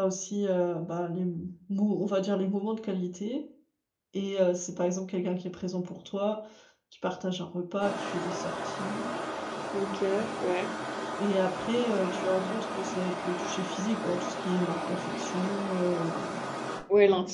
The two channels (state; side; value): identical; both; correlation 1.00